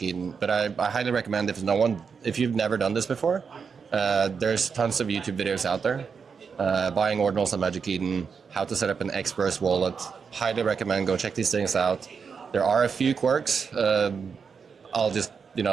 Eden. But I highly recommend, if you've never done this before, there's tons of YouTube videos out there. Buying ordinals on Magic Eden, how to set up an Xverse wallet. Highly recommend, go check these things out. There are a few quirks. The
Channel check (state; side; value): quieter; left; 5.9 dB